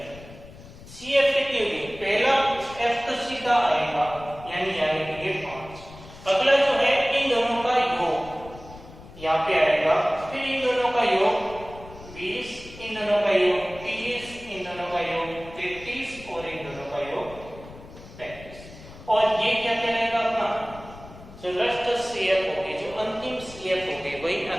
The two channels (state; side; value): noise; left; rumble, 18 dB below the sound